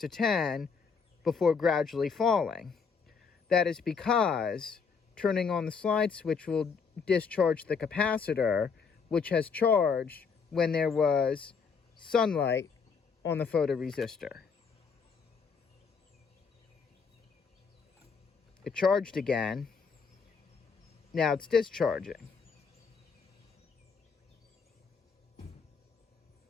10 before gradually falling. That is because turning on the slide switch will discharge the capacitor, which has charged when there was sunlight on the photoresistor. It charged again. Now it's discharging.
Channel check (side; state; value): right; quieter; 5.6 dB